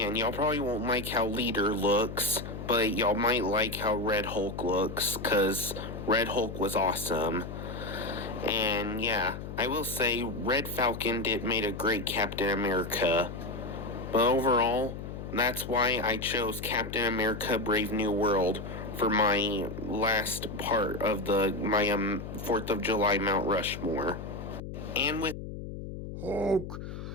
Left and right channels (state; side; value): noise; left; hum, 8 dB below the sound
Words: y'all probably won't like how Leader looks, but y'all might like how Red Hulk looks, because Red Hulk was awesome. And yeah, I will say Red Falcon made a great Captain America. But overall, that's why I chose Captain America Brave New World for my last part of my 4th of July Mount Rushmore. And with Hulk